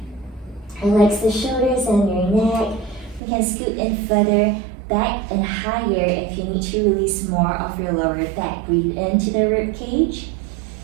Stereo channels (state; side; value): drops out; left; at 3.2 s